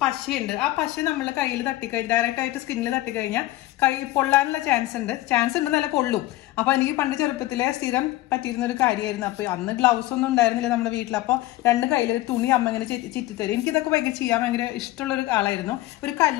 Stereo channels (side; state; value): right; quieter; 16.7 dB